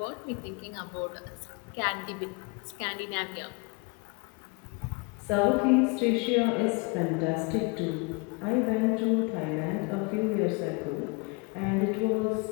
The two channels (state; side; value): quieter; right; 29.3 dB